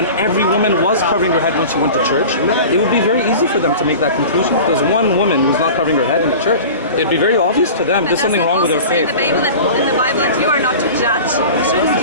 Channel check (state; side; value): inverted; both; correlation -0.37